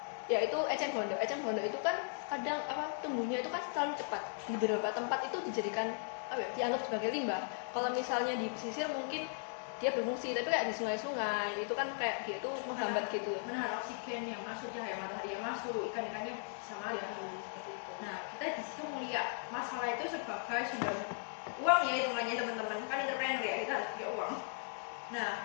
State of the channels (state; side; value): silent; right; 53 dB below the other